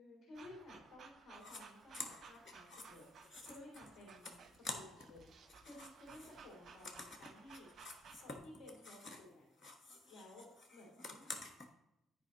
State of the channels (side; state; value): both; normal; correlation 0.65